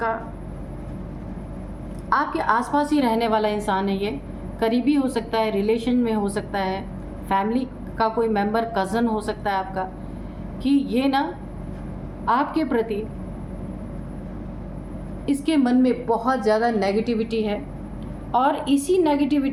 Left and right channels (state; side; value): identical; both; correlation 1.00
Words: आसपास ही रहने वाला इंसान है। ये करीबी हो सकता है, रिलेशन में हो सकता है, फैमिली का कोई मेंबर, कज़न हो सकता है आपका, कि ये ना आपके प्रति इसके मन में बहुत ज़्यादा नेगेटिविटी है, और इसी